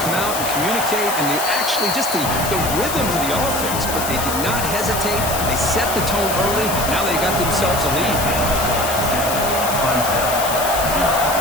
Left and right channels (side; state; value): left; noise; hiss, 5 dB below the sound